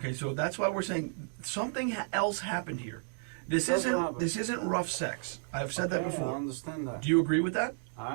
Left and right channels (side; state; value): left; silent; digital silence